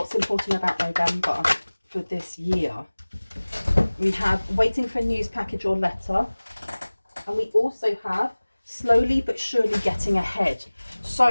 important about November for this year? We have waiting for news, package or letter. And we also have slowly but surely getting ahead.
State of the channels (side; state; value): both; inverted; correlation -1.00